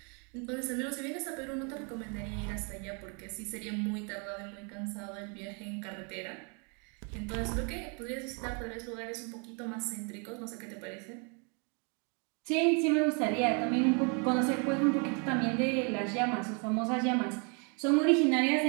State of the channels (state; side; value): quieter; left; 36.1 dB